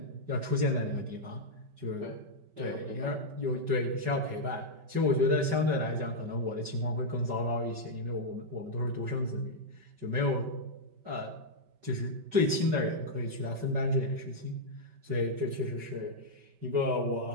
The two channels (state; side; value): late; left; 5.2 ms